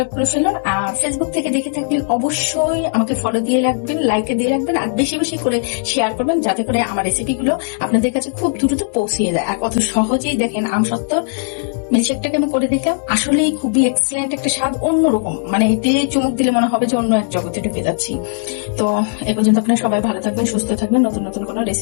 করে ফেলুন। আর ফেসবুক থেকে দেখে থাকলে অবশ্যই আমাকে ফলো দিয়ে রাখবেন, লাইক দিয়ে রাখবেন, আর বেশি বেশি করে শেয়ার করবেন, যাতে করে আমার রেসিপিগুলো আপনাদের কাছে খুব দ্রুত পৌঁছিয়ে যায়। আর কত সহজেই দেখেন আমসত্ত্বর মিল্কশেকটাকে আমি করে দেখলাম, আসলেই খুবই এক্সেলেন্ট একটা স্বাদ, অন্যরকম। মানে এতে চুমুক দিলে মনে হবে যে অন্য এক জগতে ঢুকে যাচ্ছি। তো এ পর্যন্ত আপনারা সবাই ভালো থাকবেন, সুস্থ থাকবেন। নতুন নতুন কোনো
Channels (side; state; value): right; silent; digital silence